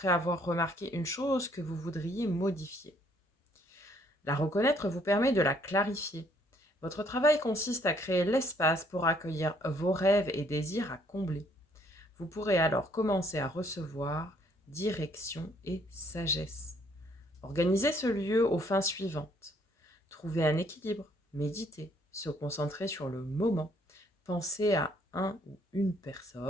avoir remarqué une chose que vous voudriez modifier. La reconnaître vous permet de la clarifier. Votre travail consiste à créer l'espace pour accueillir vos rêves et désirs à combler. Vous pourrez alors commencer à recevoir direction et sagesse. Organisez ce lieu aux fins suivantes. Trouver un équilibre, méditer, se concentrer sur le moment, penser à un ou une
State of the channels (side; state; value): both; normal; correlation 0.65